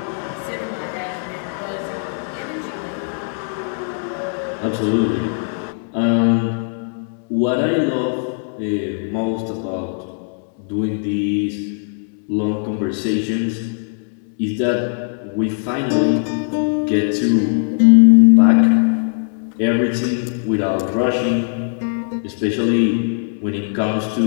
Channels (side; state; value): right; silent; digital silence